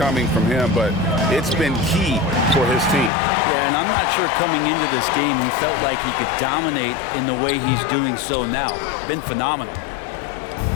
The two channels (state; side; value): drops out; right; at 3.1 s